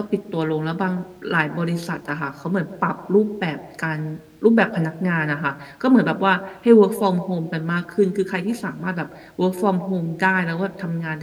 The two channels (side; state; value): both; identical; correlation 1.00